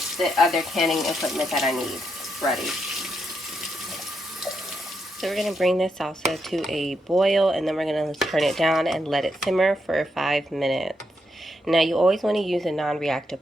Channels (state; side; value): normal; both; correlation 0.81